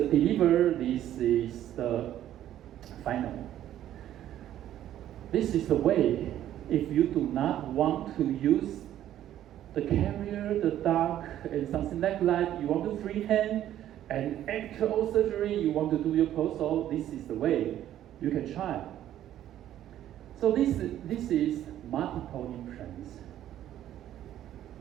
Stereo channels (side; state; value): left; quieter; 12.0 dB